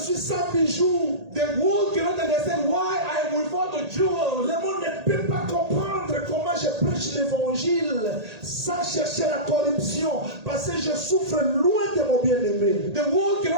sans bijoux. The world cannot understand why I am without a jewel. Le monde ne peut pas comprendre comment je prêche l'évangile sans chercher la corruption parce que je souffre loin de mon bien-aimé. The world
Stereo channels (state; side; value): late; left; 1.8 ms